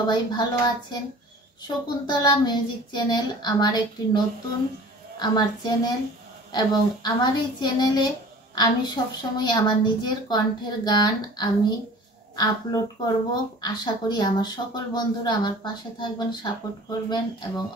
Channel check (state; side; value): normal; both; correlation 0.44